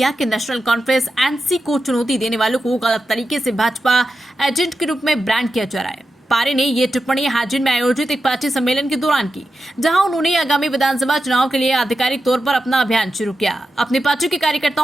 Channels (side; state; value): both; normal; correlation 0.90